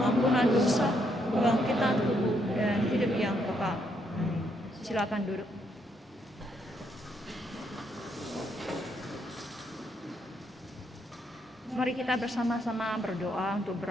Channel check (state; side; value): normal; both; correlation 0.75